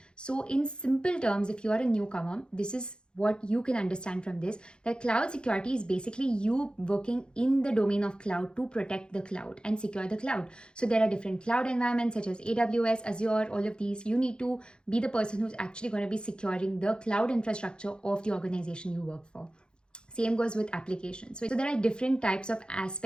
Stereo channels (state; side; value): late; right; 0.050 ms